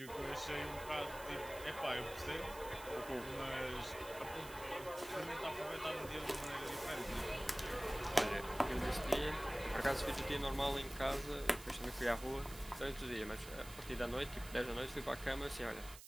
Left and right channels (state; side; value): noise; right; hiss, 15 dB below the sound